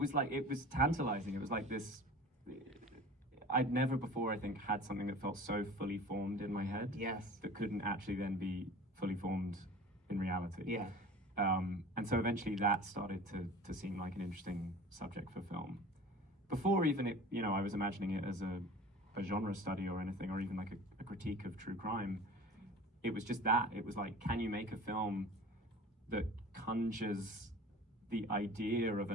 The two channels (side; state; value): both; normal; correlation 0.40